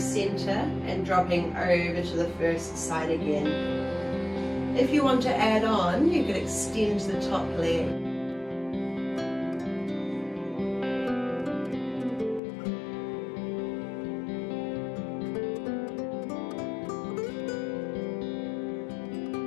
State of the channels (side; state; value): right; drops out; at 12.4 s